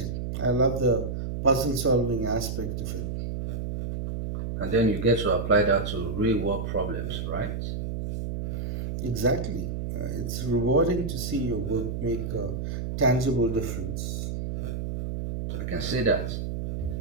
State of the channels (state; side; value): noise; right; hum, 3 dB below the sound